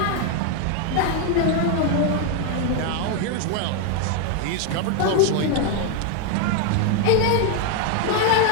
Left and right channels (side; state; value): both; different; correlation 0.00